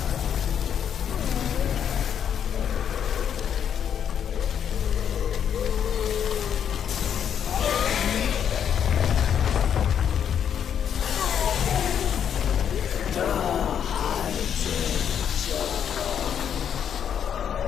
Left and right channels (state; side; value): quieter; right; 8.6 dB